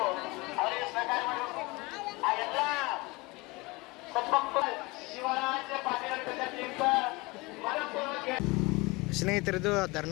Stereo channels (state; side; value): quieter; right; 24.2 dB